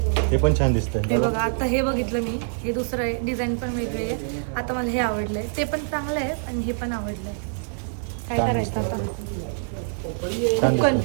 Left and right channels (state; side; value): silent; left; digital silence